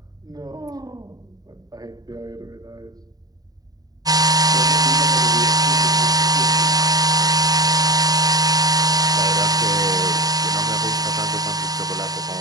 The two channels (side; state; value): left; late; 0.18 ms